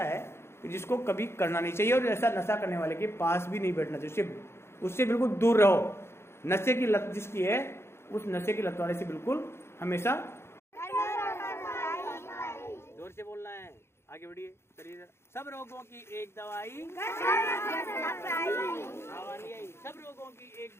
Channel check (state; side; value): late; right; 0.12 ms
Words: है कि जिसको कभी करना नहीं चाहिए, और ऐसा नशा करने वाले के पास भी नहीं बैठना चाहिए, उससे बिल्कुल दूर रहो। नशे की लत जिसकी है, उस नशे की लत वाले से बिल्कुल हमेशा जोर से बोलना है। आगे बढ़िए, चलिए। सब रोगों की एक दवाई, आवाज नहीं आई। सब रोगों की एक